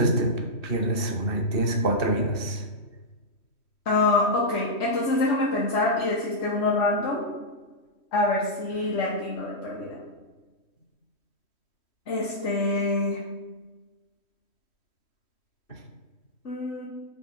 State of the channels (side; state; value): right; late; 3.1 ms